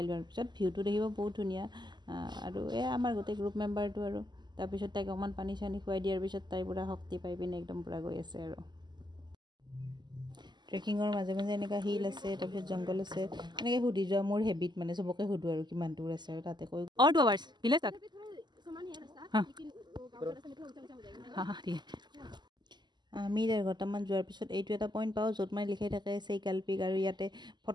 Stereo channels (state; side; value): late; left; 0.21 ms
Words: লোৱাৰ পিছত ভিউটো দেখিব বহুত ধুনীয়া আৰু এয়া আমাৰ গোটেই গ্ৰুপ মেম্বাৰটো আৰু তাৰপিছত তাইক অকণমান পানী চানী খুৱাই দিয়াৰ পিছত তাই পূৰা শক্তি পাই পিনে একদম পূৰা গৈ আছে আৰু ট্ৰেকিঙৰ মাজে মাজে এনেকুৱা হিল আছে তাৰপিছত জংঘল আছে এনেকৈ সুধি যোৱা মোৰ হেবিট মানে চবকে সুধোঁ আৰু কিমান দূৰ আছে আৰু তাতে কৈ 2 আৱাৰ্ছ ভিলেজ তাক আমি 1.5 ঘণ্টামান যোৱাৰ পিছত এইটো এটা পইণ্ট পাওঁ য'ত মানে লিখাই থাকে চেইকালপিক আৰু ইয়াতে